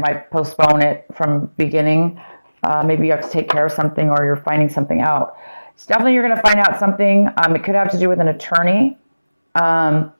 postpone it from beginning. Maybe you have to take care of something or you're finding something out. It's definitely you're going to find out something. It could have to do with an attorney.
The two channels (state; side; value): inverted; both; correlation -0.99